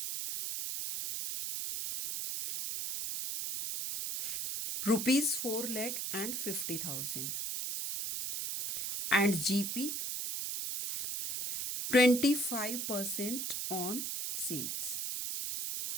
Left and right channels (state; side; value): noise; right; hiss, 2 dB below the sound